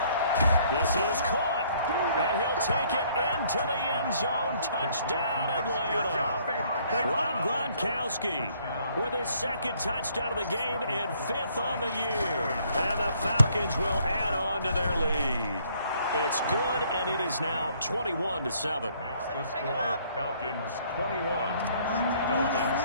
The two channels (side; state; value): both; inverted; correlation -0.64